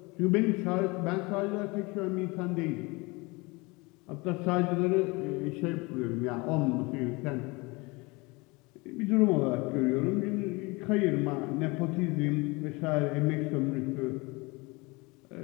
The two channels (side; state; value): right; quieter; 25.6 dB